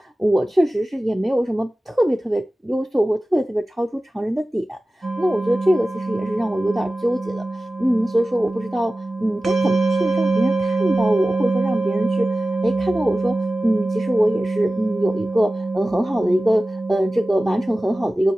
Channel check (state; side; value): normal; both; correlation 0.96